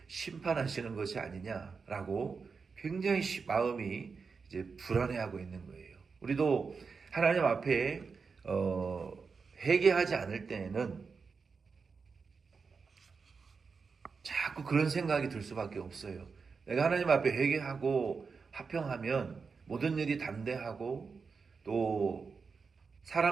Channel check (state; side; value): quieter; left; 5.1 dB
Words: 심판하시는 것이 아니냐라고 굉장히 마음이 이제 불안해하고 있는 거예요. 우리도 하나님 앞에 회개하지 않을 때에는 자꾸 그런 생각이 들 수밖에 없어요. 내가 하나님 앞에 회개하고 화평하면 모든 일이 담대하고, 또